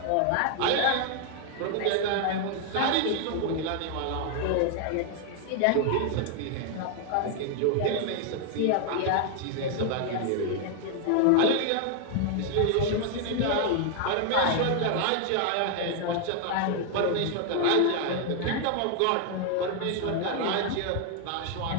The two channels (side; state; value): both; different; correlation 0.00